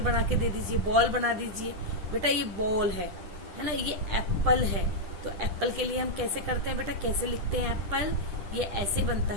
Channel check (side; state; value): left; late; 10 ms